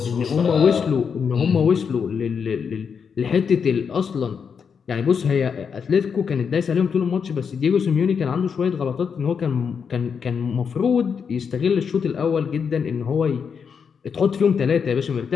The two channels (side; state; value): right; quieter; 6.5 dB